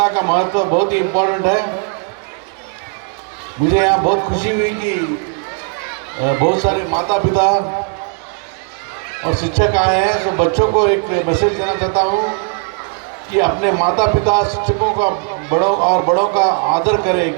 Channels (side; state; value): left; quieter; 35.7 dB